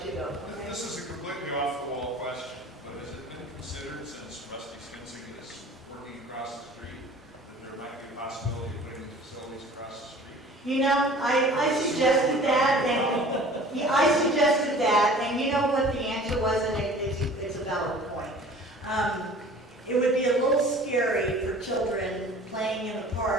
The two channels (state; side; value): normal; both; correlation 0.46